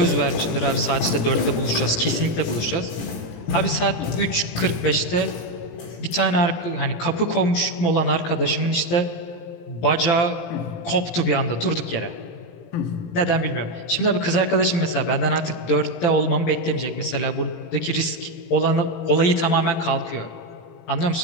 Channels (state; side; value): late; right; 18 ms